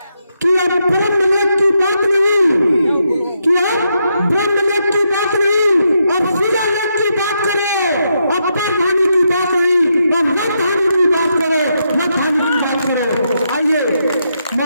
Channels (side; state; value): both; inverted; correlation -0.81